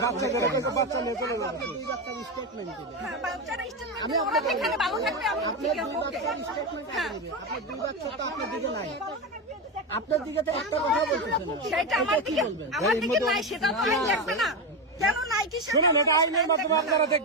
বাচ্চাদের কাছে বাচ্চা নিয়ে চলে যাবে স্টেটমেন্ট দিবেন। বাচ্চারা স্টেটমেন্ট ওরা এখানে ভালো থাকবে আমি ঠিক আছে আপনার 2 বাচ্চা তো আপনার দিকে নাই, আপনার দিকে তো একটা কথা বলতেছেন না। সেটা আমার দিকে নাই সেটা তো আইন দেখবে না কেন নাই কি শুনুন এটা আইনের মাধ্যমে আপনারা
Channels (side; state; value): both; normal; correlation 0.14